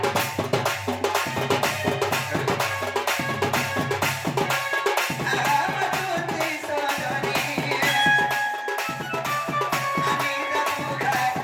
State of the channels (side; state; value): both; identical; correlation 1.00